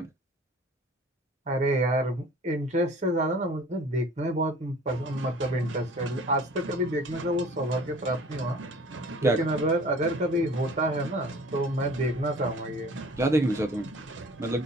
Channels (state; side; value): normal; both; correlation 0.47